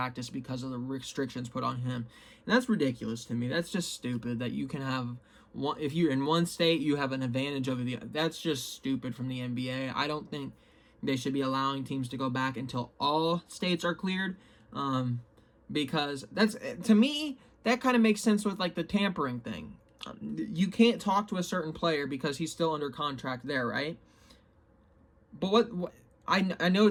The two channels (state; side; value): identical; both; correlation 1.00